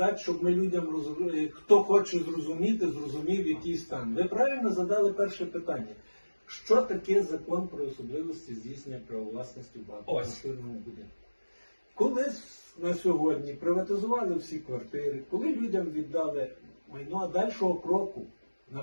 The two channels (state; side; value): inverted; both; correlation -1.00